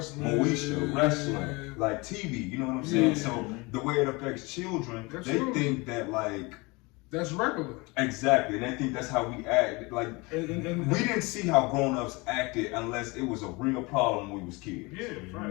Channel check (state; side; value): quieter; right; 25.7 dB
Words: wrestling, like TV, you know what I'm saying? Yeah. So the way it affects children, they think that like that's regular. Exactly, and they think that's how we act. Like and we didn't see how grown-ups acted unless it was a real problem when we was kids. Yeah,